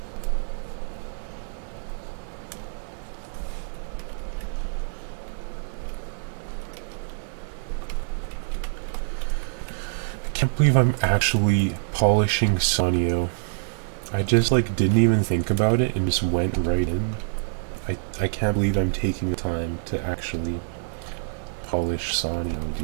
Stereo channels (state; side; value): silent; left; digital silence